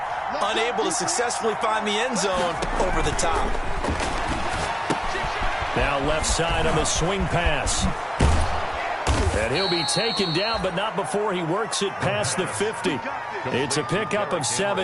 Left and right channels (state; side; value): identical; both; correlation 1.00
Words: unable to successfully find the end zone over the top. Now left side on the swing pass. And he'll be taken down, but not before he works it past the 50. It's a pickup of